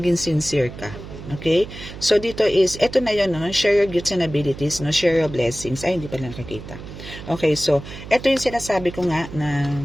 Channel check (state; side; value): noise; right; hum, 13 dB below the sound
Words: sincere ka. Okay? So, dito is, eto na yun, no? Share your gifts and abilities, no? Share your blessings. Ay, hindi pa lang nakikita. Okay, so, eto yung sinasabi ko nga na